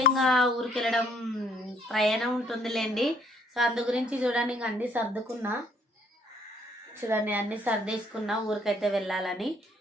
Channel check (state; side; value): normal; both; correlation 0.65